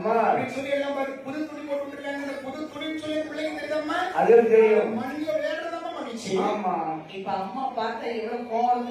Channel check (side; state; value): both; identical; correlation 1.00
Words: அப்படின்னு சொல்லி எல்லாம் பாரு, புது துணி போட்டு இருக்காங்க. இந்த புது துணின்னு சொல்லி பிள்ளைங்க தெரியுதம்மா, அது தெரியும். மண்ணில விளையாடுறதம்மா மகிழ்ச்சி. ஆமா இப்ப அம்மா பார்த்தா எவ்வளவு கோவம்